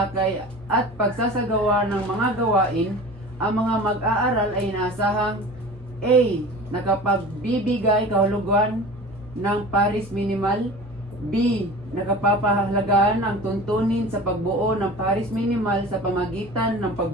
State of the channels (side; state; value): both; normal; correlation 0.37